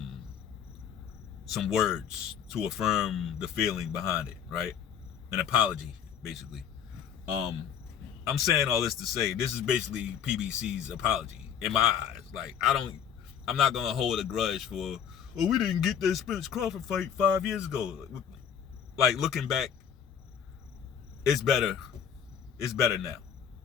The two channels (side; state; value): right; quieter; 8.4 dB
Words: words to affirm the feeling behind it, right? An apology, basically. I'm saying all this to say, this is basically PBC's apology in my eyes. Like, I'm not gonna hold a grudge for, oh, we didn't get that Spence Crawford fight 5 years ago. Like, looking back, it's better. It's better now.